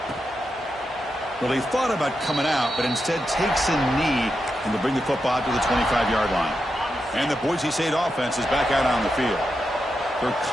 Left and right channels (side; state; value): both; normal; correlation 0.87